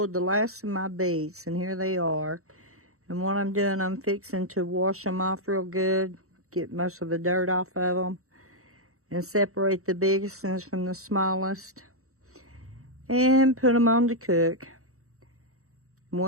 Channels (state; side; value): late; left; 0.64 ms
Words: the last of my beets, and here they are. And what I'm doing, I'm fixing to wash them off real good, get most of the dirt off of them, and separate the biggest ones from the smallest, and put them on to cook. And